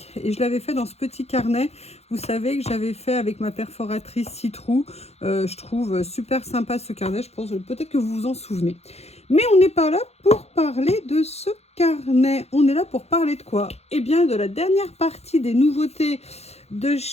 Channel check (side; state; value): right; late; 0.31 ms